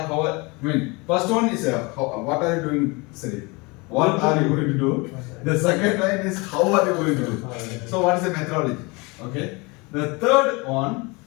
First one is what are you doing? Sorry, what are you going to do? The second line is how are you going to do? So what is the methodology? Okay. The third one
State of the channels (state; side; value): quieter; right; 26.9 dB